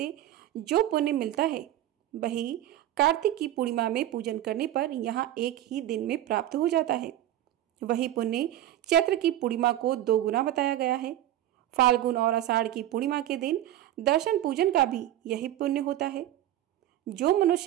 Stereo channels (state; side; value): quieter; left; 13.2 dB